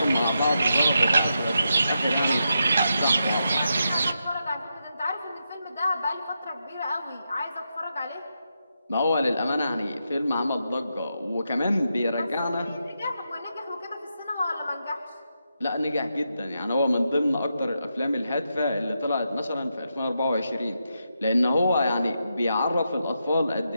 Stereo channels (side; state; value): both; inverted; correlation -0.85